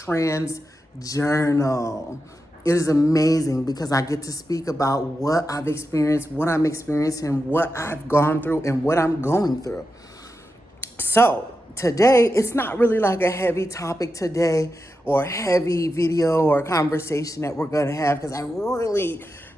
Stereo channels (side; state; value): both; normal; correlation 0.89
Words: Journal. It is amazing because I get to speak about what I've experienced, what I'm experiencing, what I've gone through, and what I'm going through. So today, it's not really like a heavy topic today or a heavy video or conversation that we're going to have, because I really